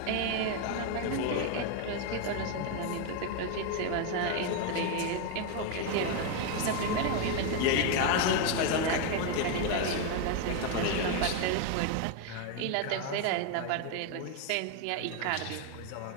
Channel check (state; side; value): different; both; correlation 0.01